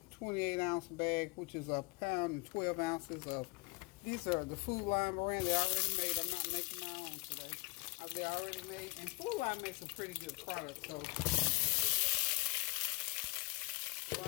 28-ounce bag, which is a pound and 12 ounces of. These are the Food Line brand. They're already made. I'm not making my own today. They're already made, and Food Line makes a pretty good product. So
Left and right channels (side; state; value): right; quieter; 26.0 dB